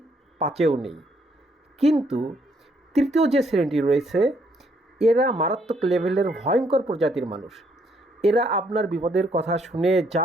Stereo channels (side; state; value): both; normal; correlation 0.70